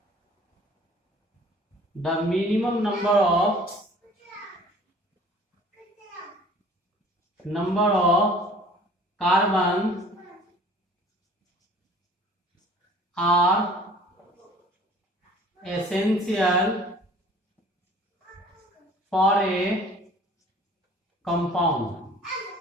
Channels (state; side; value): normal; both; correlation 0.50